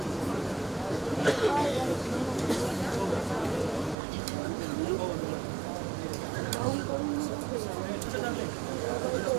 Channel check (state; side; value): drops out; left; at 4.0 s